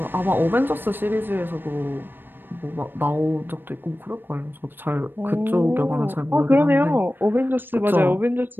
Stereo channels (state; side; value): late; left; 0.096 ms